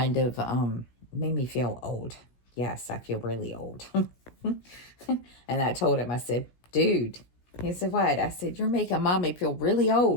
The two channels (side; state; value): right; late; 17 ms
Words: of, made me feel old. Yes, I feel really old. And I told him, I said, dude, he said, what? I said, you're making mommy feel really